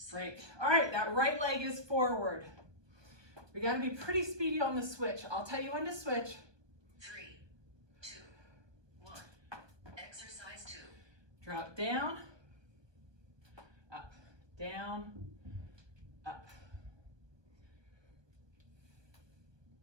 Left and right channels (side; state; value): left; late; 1.2 ms